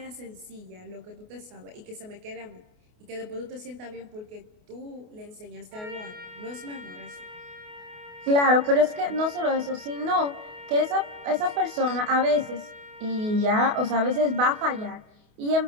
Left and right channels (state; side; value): late; left; 28 ms